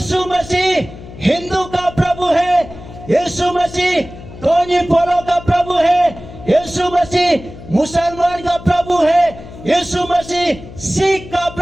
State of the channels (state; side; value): noise; left; hum, 16 dB below the sound